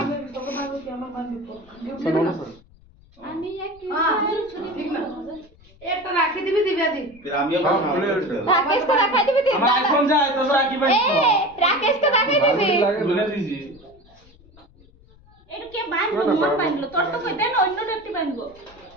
আমি এক ঠিক না একটা রাখি দিবি দিবে দি फिर हम ये রাকেশ তো রাখাই দিবি আমার আইফোন যায় তো রাখি বাই এ রাকেশ তো রাখাই দিবি বলে দিছি এটা কে বাঁধবো মোর বাঁধলো তোর তো কই দেন অন্য একটি বাঁধবো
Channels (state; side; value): noise; left; rumble, 27 dB below the sound